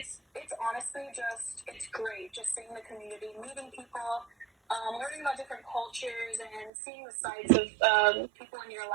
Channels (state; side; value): drops out; left; at 6.7 s